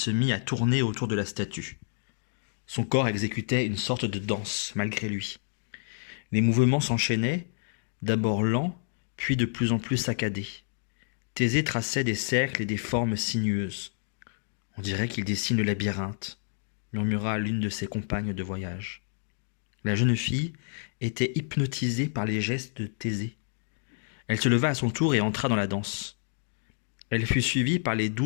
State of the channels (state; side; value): silent; right; digital silence